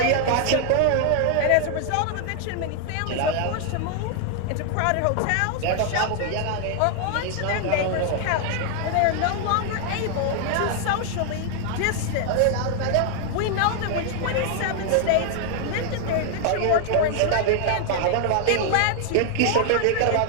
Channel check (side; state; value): both; different; correlation 0.00